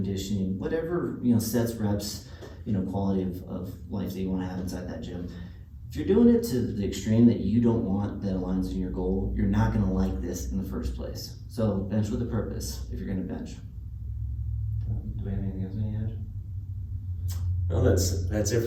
whatever, sets, reps, quality of life that you want to have inside that gym. If you're doing it to the extreme that you don't want, that aligns with your goal, you're not going to like this in the first place. So bench with a purpose if you're going to bench. Do we have anything else you want to add? Well, that's it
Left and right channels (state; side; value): identical; both; correlation 1.00